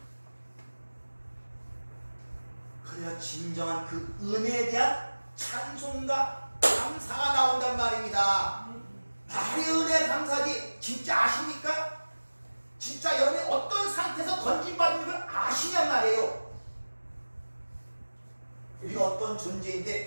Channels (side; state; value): both; inverted; correlation -1.00